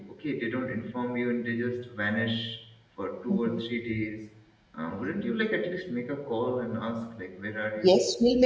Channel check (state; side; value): identical; both; correlation 1.00